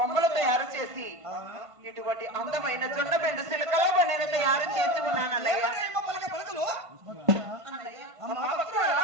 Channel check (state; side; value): late; left; 1.5 ms